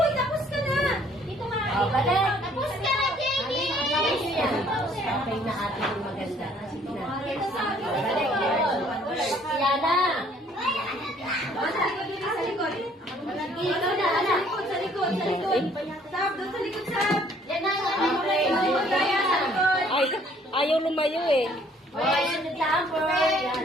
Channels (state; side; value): normal; both; correlation 0.60